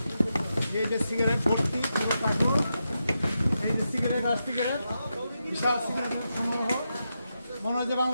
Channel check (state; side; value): inverted; both; correlation -0.87